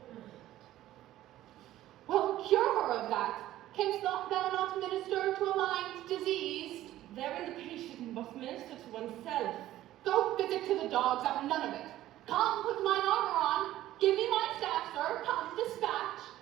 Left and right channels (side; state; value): left; quieter; 14.2 dB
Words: Well, cure her of that. Canst thou not minister to a mind diseased? Therein the patient must minister to oneself. Go physic to the dogs, I've none of it. Come, put mine armor on. Give me my staff, sir. Come, dispatch.